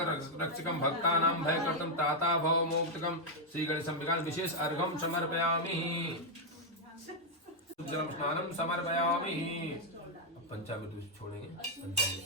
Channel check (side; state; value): both; normal; correlation -0.02